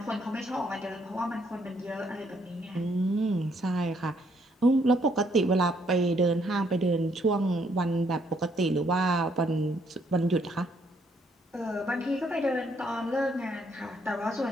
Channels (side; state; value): both; normal; correlation 0.70